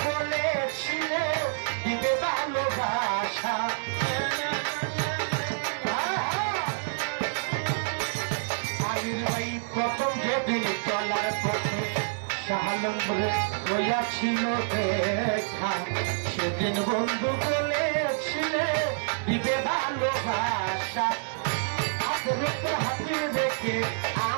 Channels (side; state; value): left; silent; digital silence